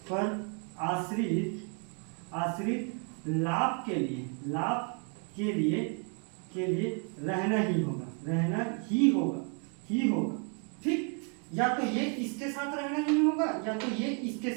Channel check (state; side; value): quieter; left; 39.8 dB